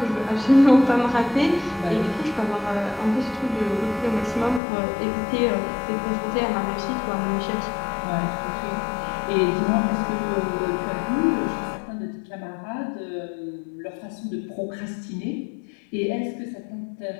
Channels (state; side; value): drops out; right; at 4.6 s